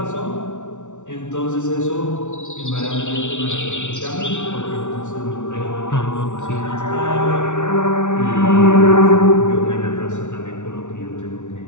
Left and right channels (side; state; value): right; late; 0.85 ms